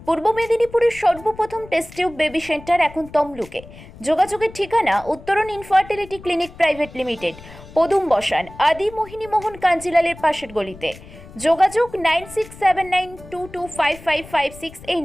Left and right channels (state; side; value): noise; left; rumble, 18 dB below the sound